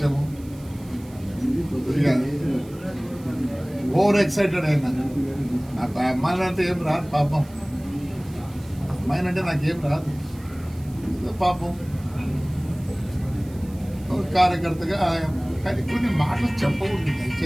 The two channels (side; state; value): right; noise; hiss, 24 dB below the sound